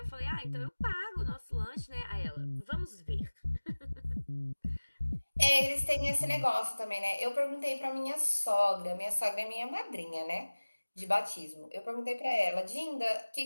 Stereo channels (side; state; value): both; inverted; correlation -1.00